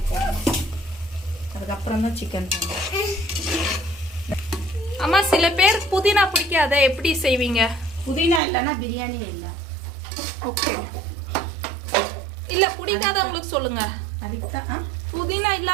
போடணும். அம்மா சில பேர் புதினா பிடிக்காத, எப்படி செய்வீங்க? புதினா இல்லைன்னா பிரியாணியே இல்லை. ஓகே, இல்லை பிடிக்காதவங்களுக்கு சொல்லுங்க. அதுக்கு தான் புதினா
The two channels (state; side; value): drops out; left; at 8.4 s